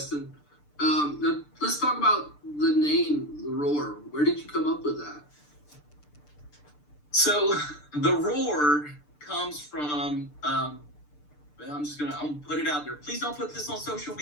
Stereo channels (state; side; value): late; right; 6.8 ms